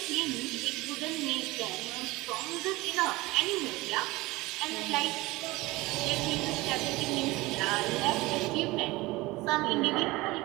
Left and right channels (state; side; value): quieter; left; 20.8 dB